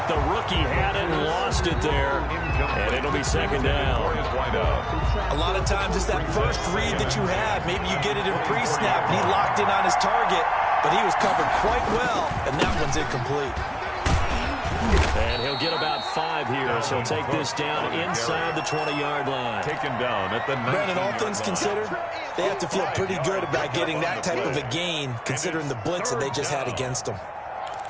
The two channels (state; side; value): identical; both; correlation 1.00